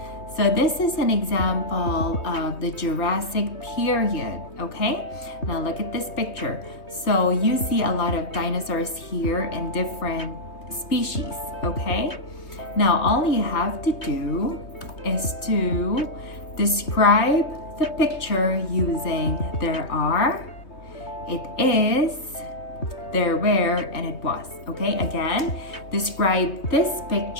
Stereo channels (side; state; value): right; late; 3.2 ms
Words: So this is an example of the Jurassic period, okay? Now look at this picture. So you see a lot of dinosaurs here and different species, okay? Now all you have to do is to describe the picture using there are, it is, there were, and it was, okay? Again, describe this